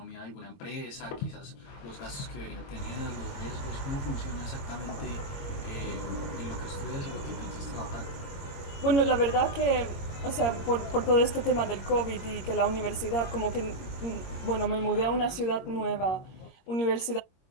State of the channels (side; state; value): right; late; 22 ms